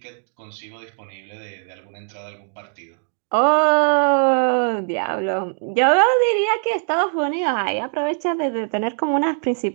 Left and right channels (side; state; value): left; silent; 63 dB below the other